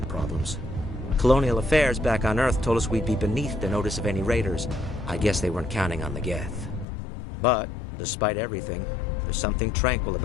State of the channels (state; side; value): drops out; right; at 6.9 s